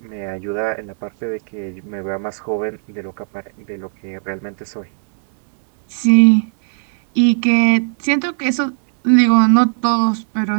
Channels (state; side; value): silent; left; digital silence